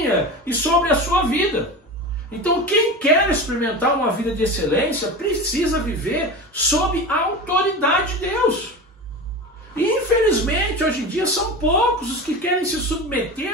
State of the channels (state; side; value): normal; both; correlation 0.27